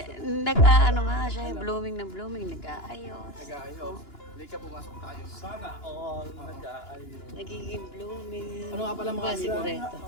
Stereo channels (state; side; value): late; right; 2.9 ms